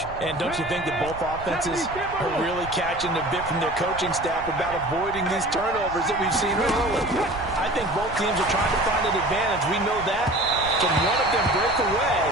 And don't you think that both offenses are really catching a bit from their coaching staff about avoiding these turnovers that we've seen early? I think both teams are trying to find an advantage. We know that. Can one of them break away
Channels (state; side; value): noise; right; rumble, 15 dB below the sound